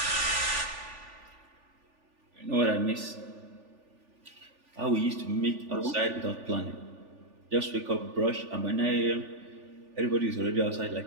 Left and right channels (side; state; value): left; late; 3.4 ms